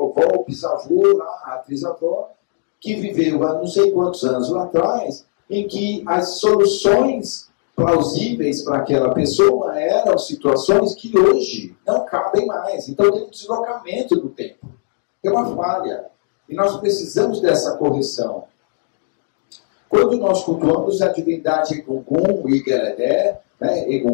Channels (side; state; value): right; silent; digital silence